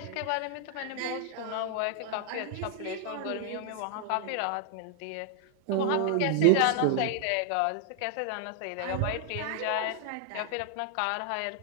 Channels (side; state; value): both; different; correlation 0.00